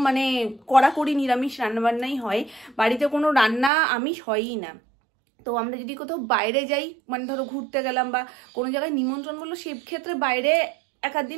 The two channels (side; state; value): left; drops out; at 3.7 s